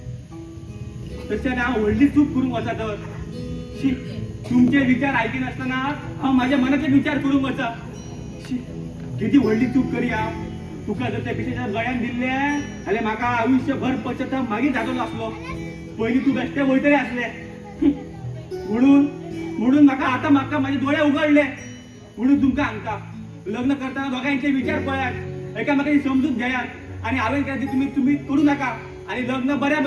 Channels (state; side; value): identical; both; correlation 1.00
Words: तसे ना व्हडली चूक करून वचा तर शी, तुमचे विचार ऐकी नसताना हा माझ्या मनाचे विचार करून वचा शी, किती व्हडली चूक करी हा. तुका जर त्या पिशेच्या गळ्यान दिले जाल्यार म्हाका आयुष्यभर पश्चाताप मागीर जातलो असलो. पयलीं तू बेश्टे वयतले असले म्हणून म्हाका माझे डोळे उघडले. म्हणून तुमकां सांगता, लग्न करताना दोघांचे विचार पळयात, एकामेकाची समजूत घेयात आणि हांवें केलें तुम्ही करू नका आणि लग्न बऱ्या